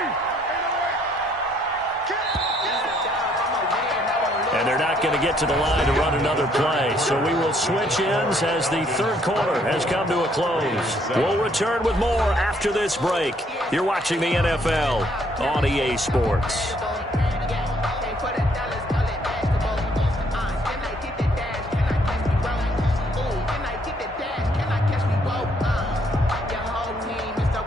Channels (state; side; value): normal; both; correlation 0.67